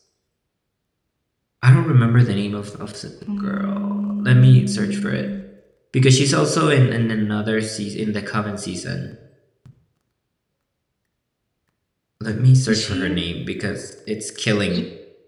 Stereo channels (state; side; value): identical; both; correlation 1.00